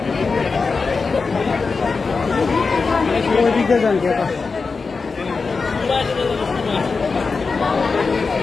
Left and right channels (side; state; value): right; quieter; 4.5 dB